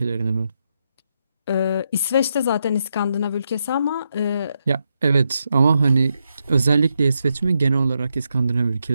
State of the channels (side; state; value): both; inverted; correlation -0.83